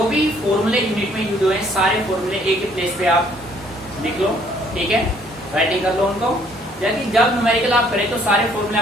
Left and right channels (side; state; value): both; normal; correlation 0.63